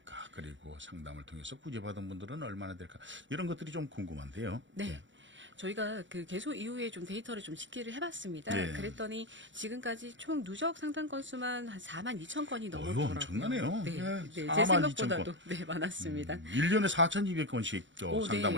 그리고 상담을 통해서 구제받은 분들은 얼마나 될까? 이런 것들이 좀 궁금한데요. 네. 저희가 그 개소 이후에 좀 데이터를 좀 집계를 해봤습니다. 네. 그랬더니 지금까지 총 누적 상담 건수만 한 4만 2천 건이 넘었더라고요. 엄청나네요. 네, 예, 제 4만 2천 생각보다도 건. 네, 많았습니다. 1년에 4,200건씩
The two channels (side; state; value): left; late; 0.55 ms